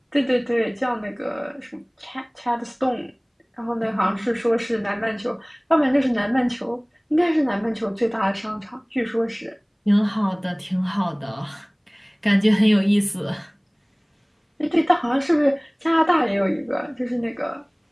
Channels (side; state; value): both; identical; correlation 1.00